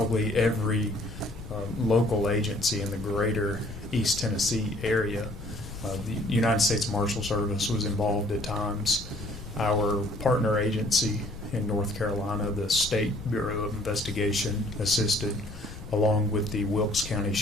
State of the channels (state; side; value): noise; left; rumble, 12 dB below the sound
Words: every local agency in the greater East Tennessee area. The United States Marshal Service was involved at times. Our partner agency in North Carolina, the State Bureau of Investigation, assisted, along with the Wilkes County